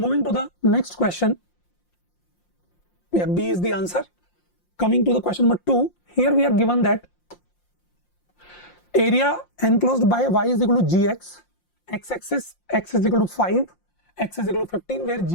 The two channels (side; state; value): right; late; 5.7 ms